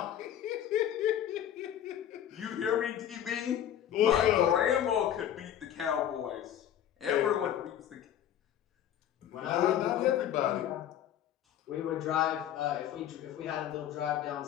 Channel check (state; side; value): quieter; right; 10.6 dB